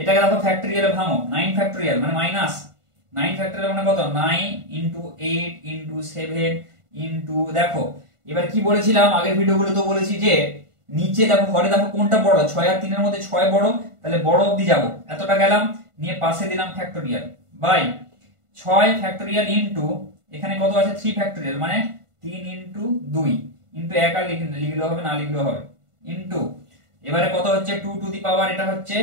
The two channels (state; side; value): late; left; 1.5 ms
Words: দেখো ফ্যাক্টরিয়ালে ভাঙো, 9 ফ্যাক্টরিয়াল মানে মাইনাস 9 ফ্যাক্টরিয়াল মানে কত, 9 ইন্টু 8 ইন্টু 7 ইন্টু, দেখো এবার কি বলেছিলাম আগের ভিডিওগুলো তো বলেছি যে নিচে দেখো ঘরে দেখো কোনটা বড়, 6 আর 3 এর মধ্যে 6 বড়, তাহলে বড় অবধি যাব, এতটা গেলাম, নিয়ে পাশে দিলাম ফ্যাক্টরিয়াল বাই 6 ফ্যাক্টরিয়াল ইন্টু এখানে কত আছে 3 ফ্যাক্টরিয়াল মানে 3 ইন্টু 2 ইন্টু 1 আর লিখলেও হবে না লিখলেও হবে ইন্টু এবারে কত হচ্ছে 2 টু দি পাওয়ার, এটা হচ্ছে